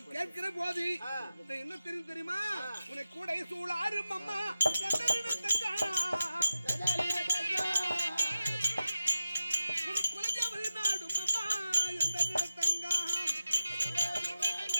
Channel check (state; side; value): inverted; both; correlation -0.91